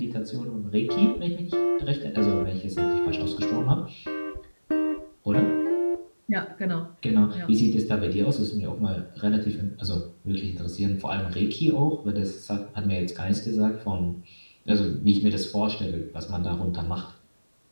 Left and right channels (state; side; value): inverted; both; correlation -1.00